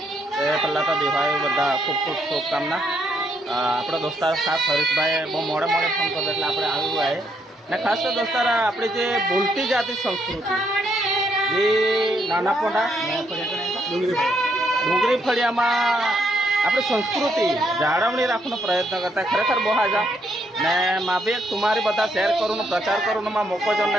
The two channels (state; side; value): normal; both; correlation 0.74